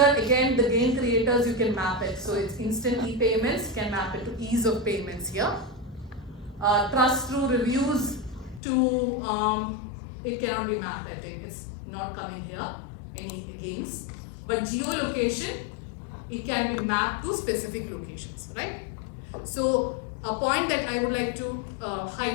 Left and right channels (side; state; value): right; drops out; at 8.6 s